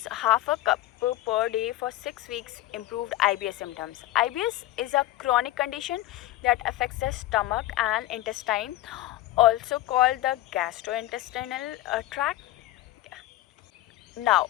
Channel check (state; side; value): quieter; right; 15.7 dB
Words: half a cup per day for 6 weeks improved IBS symptoms. IBS is a chronic condition that affects the stomach and intestine, also called the gastrointestinal tract. Now,